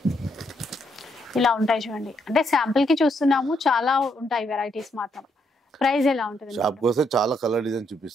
ఇలా ఉంటాయి చూడండి. అంటే శాంపుల్ కి చూస్తున్నాము, చాలా ఉంటాయి వెరైటీస్. మాత్రం ప్రైస్ ఎలా ఉంటుంది? షాప్ కోసం చాలా కలర్ డిజైన్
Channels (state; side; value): normal; both; correlation 0.75